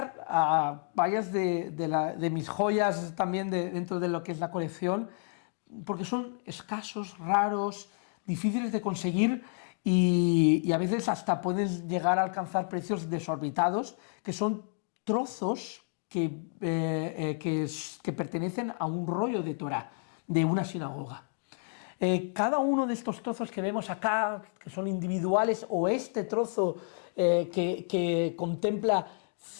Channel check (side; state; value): right; silent; 57 dB below the other